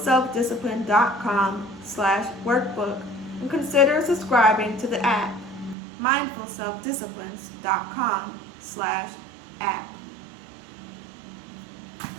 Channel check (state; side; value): drops out; left; at 5.8 s